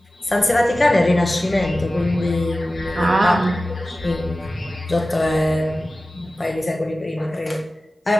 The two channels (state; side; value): normal; both; correlation 0.95